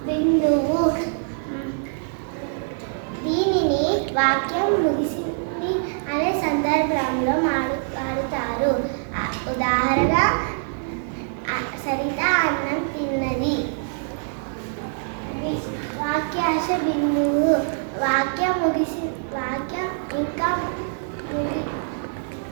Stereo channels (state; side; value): silent; left; digital silence